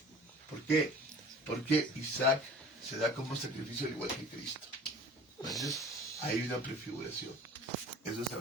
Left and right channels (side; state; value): both; normal; correlation 0.44